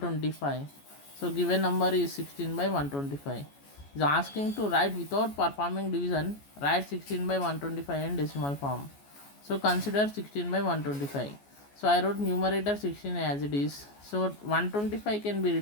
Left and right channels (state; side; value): late; right; 14 ms